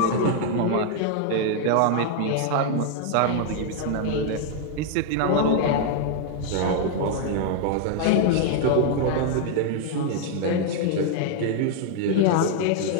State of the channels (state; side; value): different; both; correlation 0.00